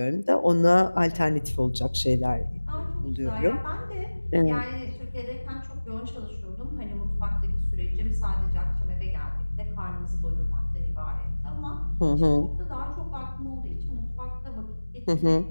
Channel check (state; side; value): inverted; both; correlation -1.00